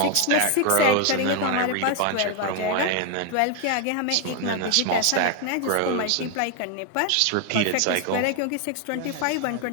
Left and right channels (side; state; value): both; different; correlation 0.01